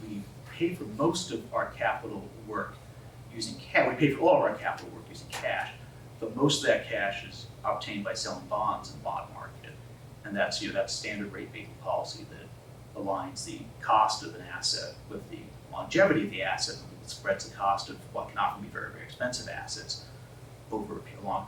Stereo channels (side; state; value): both; identical; correlation 1.00